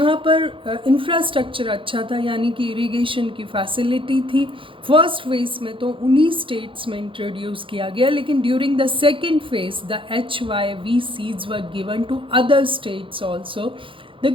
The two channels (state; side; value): late; left; 0.25 ms